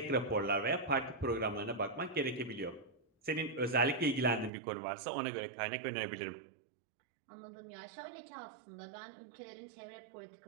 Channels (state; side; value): drops out; left; at 4.5 s